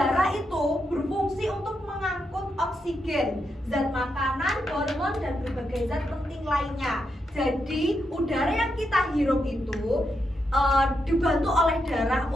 itu berfungsi untuk mengangkut oksigen, zat makanan, hormon, dan berbagai zat penting lainnya. Jadi udara yang kita hirup itu dibantu oleh darah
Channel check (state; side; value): normal; both; correlation 0.83